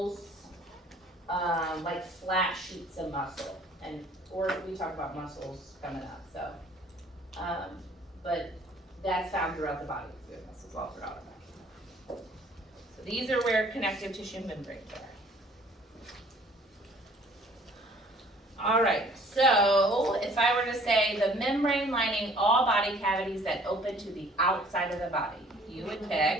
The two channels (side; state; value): both; normal; correlation 0.55